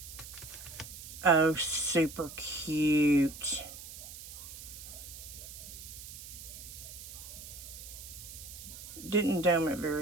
Oh, super cute. Didn't dome it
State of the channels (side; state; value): right; noise; hiss, 12 dB below the sound